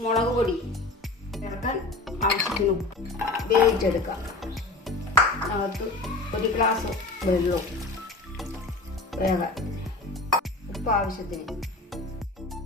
മുളക് പൊടി ചേർക്കാൻ ആവശ്യത്തിന് വേവിച്ചെടുക്കാം. അകത്ത് ഒരു ഗ്ലാസ് വെള്ളവും വേഗം ഉപ്പ് ആവശ്യത്തിന്.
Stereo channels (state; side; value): quieter; right; 3.1 dB